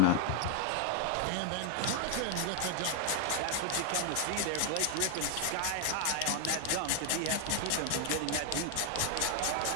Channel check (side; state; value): both; different; correlation 0.00